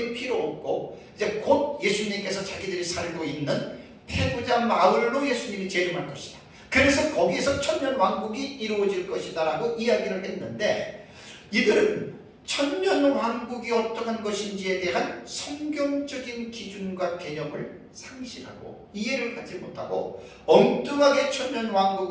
필요 없고 이제 곧 예수님께서 자기들이 살고 있는 페구자 마을로 예수님이 재림할 것이다. 그래서 거기에서 천년왕국이 이루어질 것이다 라고 이야기를 했는데 이들은 천년왕국이 어떠한 것인지에 대한 성경적인 기준과 개념을 상실하고 이해를 하지 못하고 엉뚱하게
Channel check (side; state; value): both; identical; correlation 1.00